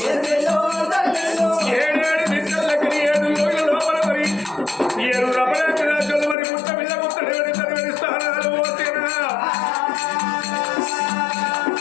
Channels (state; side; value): drops out; right; at 6.4 s